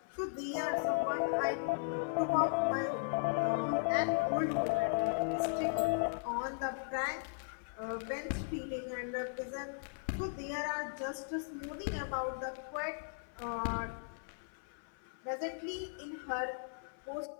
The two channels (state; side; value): silent; right; 53 dB below the other